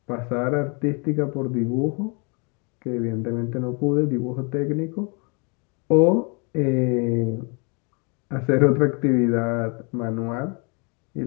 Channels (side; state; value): right; quieter; 33.7 dB